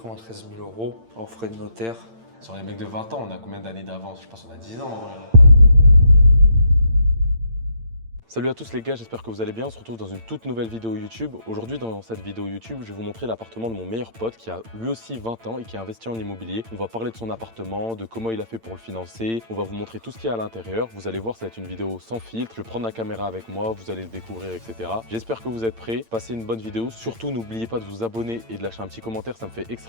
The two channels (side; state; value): left; late; 8.8 ms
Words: 000 € en frais de notaire. Sur les mecs de 20 ans, on a combien d'années d'avance? Je pense qu'on a 10 ans en vrai. Salut à tous les gars, j'espère que vous allez bien. On se retrouve dans une toute nouvelle vidéo YouTube. Aujourd'hui, dans cette vidéo YouTube, je vais vous montrer l'appartement de mon meilleur pote qui a lui aussi 20 ans et qui a investi en immobilier. On va parler de son appartement, de comment il a fait pour le financer. On va vous montrer tout ce qu'il y a à l'intérieur. Vous allez voir, ça va être une vidéo sans filtre. Je vais prendre la caméra avec moi, vous allez le découvrir, etc. J'espère que vous êtes prêts. Passez une bonne vidéo. Surtout, n'oubliez pas de vous abonner et de lâcher un petit commentaire. Ça me fait